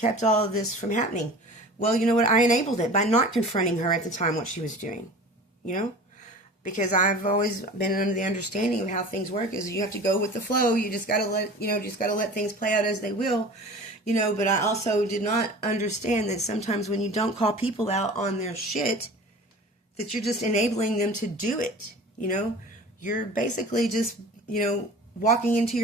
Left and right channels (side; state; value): both; normal; correlation 0.39